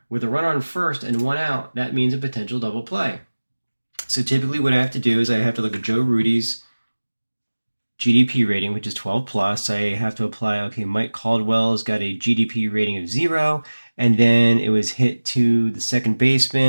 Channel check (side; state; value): both; inverted; correlation -1.00